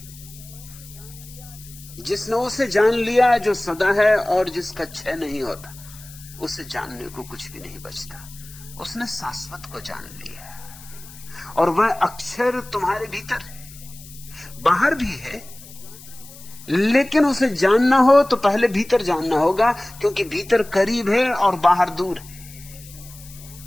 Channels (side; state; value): left; noise; hiss, 19 dB below the sound